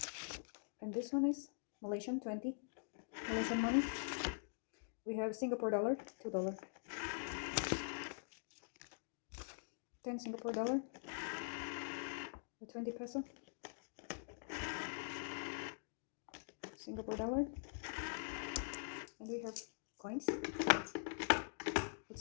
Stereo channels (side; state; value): right; silent; digital silence